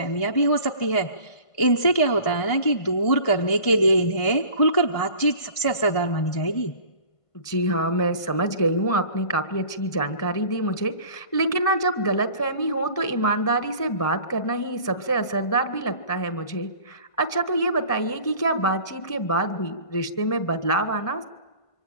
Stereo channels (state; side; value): late; right; 1.5 ms